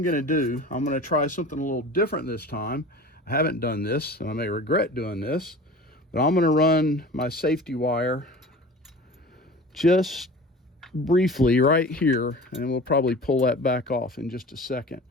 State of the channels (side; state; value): both; normal; correlation 0.39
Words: going to do, I'm going to try something a little different this time. I haven't done this, and I may regret doing this, but I'm going to run my safety wire just briefly right here, and we'll probably pull that back off in just a second.